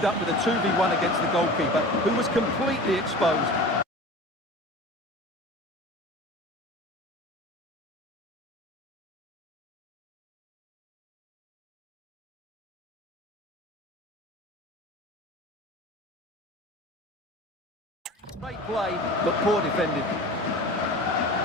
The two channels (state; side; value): normal; both; correlation 0.37